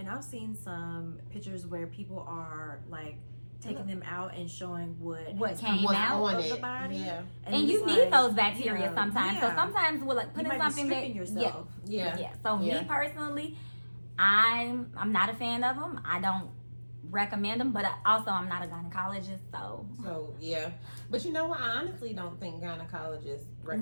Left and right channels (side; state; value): both; inverted; correlation -1.00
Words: I've seen some pictures where people are like taking them out and showing what came out of the body. Yeah. And you need those bacteria sometimes. Yeah. So sometimes we're like putting something that yourself. Yeah. So me personally, I'm not a fan of them. I don't recommend them, but also I'm not a gynecologist, so yeah. But you know what? I honestly don't think gynecologists